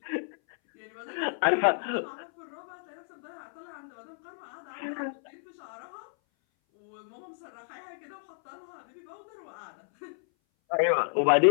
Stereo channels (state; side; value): silent; right; 57 dB below the other